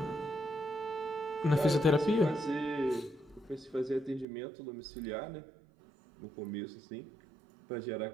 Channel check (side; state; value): left; drops out; at 4.2 s